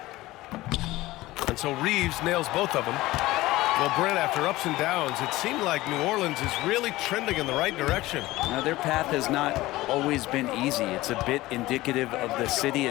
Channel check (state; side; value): quieter; right; 18.1 dB